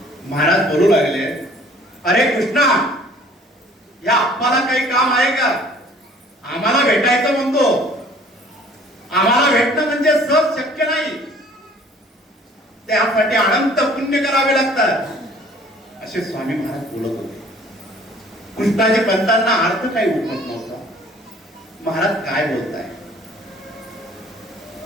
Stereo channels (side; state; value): both; normal; correlation 0.54